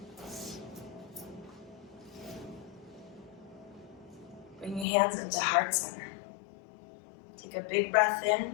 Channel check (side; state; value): right; drops out; at 4.9 s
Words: Bring your hands into heart center. Take a big breath